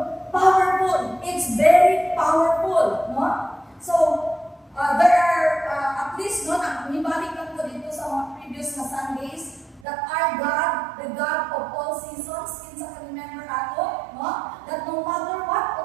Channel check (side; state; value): left; drops out; at 9.9 s